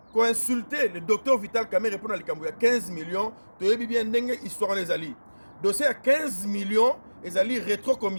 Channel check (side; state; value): both; inverted; correlation -1.00